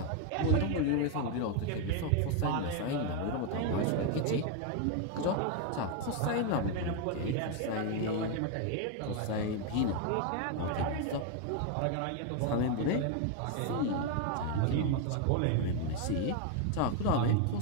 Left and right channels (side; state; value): both; different; correlation 0.01